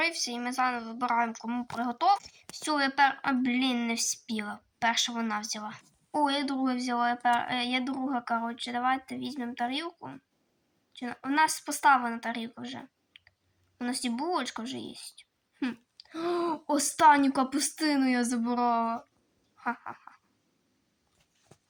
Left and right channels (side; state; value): both; identical; correlation 1.00